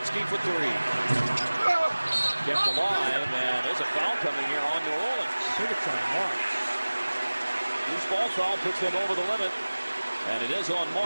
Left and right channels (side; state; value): both; inverted; correlation -1.00